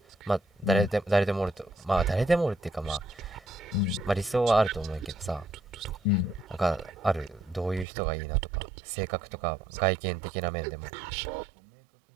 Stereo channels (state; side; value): drops out; left; at 7.9 s